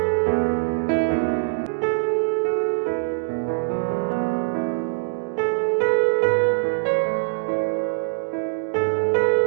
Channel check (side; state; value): left; silent; digital silence